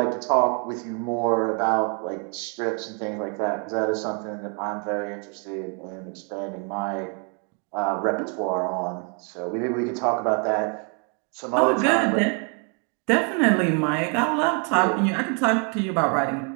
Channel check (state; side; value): quieter; left; 37.8 dB